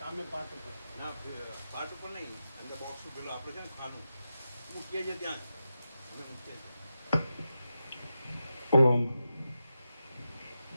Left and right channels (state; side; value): inverted; both; correlation -0.90